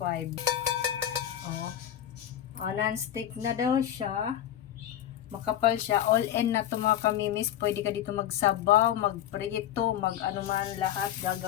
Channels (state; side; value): quieter; right; 11.3 dB